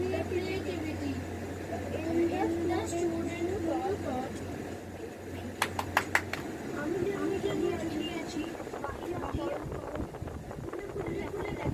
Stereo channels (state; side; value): identical; both; correlation 1.00